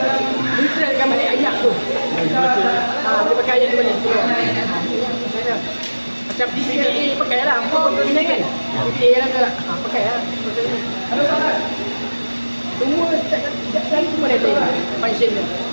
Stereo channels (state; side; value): inverted; both; correlation -1.00